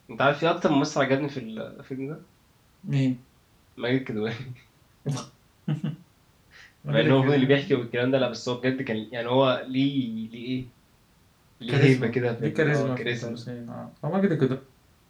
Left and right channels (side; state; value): both; identical; correlation 1.00